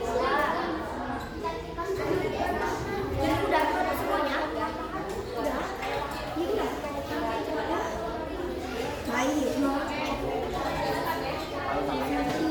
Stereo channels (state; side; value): identical; both; correlation 1.00